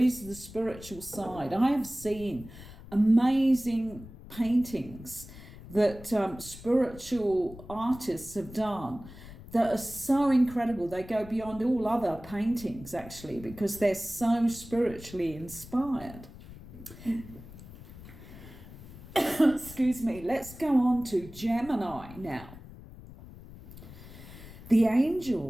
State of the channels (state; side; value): noise; left; rumble, 16 dB below the sound